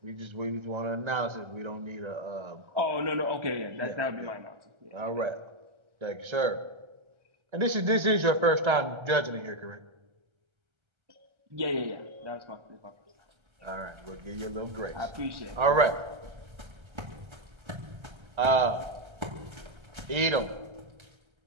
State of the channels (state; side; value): late; left; 1.3 ms